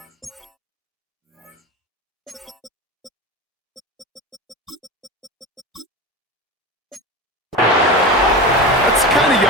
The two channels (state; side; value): normal; both; correlation 0.25